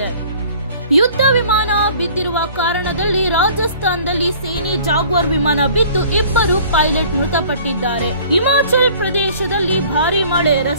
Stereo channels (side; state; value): both; inverted; correlation -0.50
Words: ಯುದ್ಧ ವಿಮಾನ ಬಿದ್ದಿರುವ ಕಾರಣದಲ್ಲಿ ರಾಜಸ್ಥಾನದಲ್ಲಿ ಸೇನೆ ಜಾಗ್ವಾರ್ ವಿಮಾನ ಬಿದ್ದು 2 ಪೈಲಟ್ ಮೃತಪಟ್ಟಿದ್ದಾರೆ. ಹಿಮಾಚಲ್ ಪ್ರದೇಶದಲ್ಲಿ ಭಾರೀ ಮಳೆ,